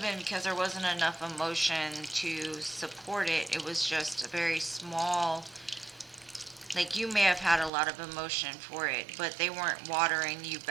been because there wasn't enough emotion to support it. It was just a very small, like you may have had a lot of emotion for it, but they weren't watering you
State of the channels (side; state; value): left; drops out; at 7.7 s